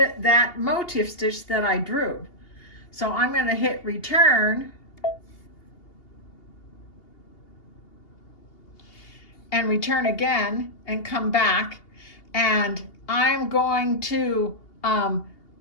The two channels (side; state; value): right; late; 2.8 ms